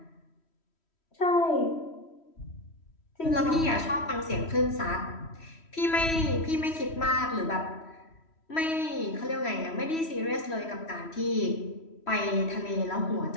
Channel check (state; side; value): late; right; 3.1 ms